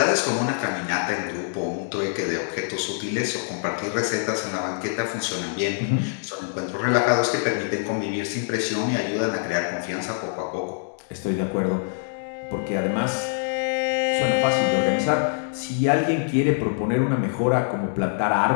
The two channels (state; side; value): silent; right; digital silence